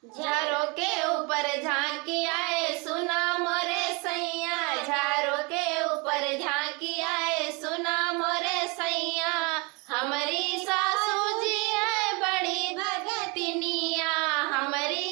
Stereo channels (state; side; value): quieter; left; 29.8 dB